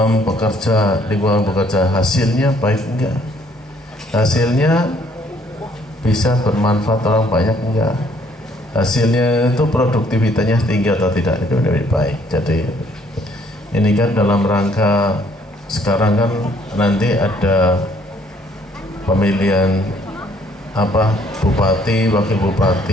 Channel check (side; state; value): both; normal; correlation 0.64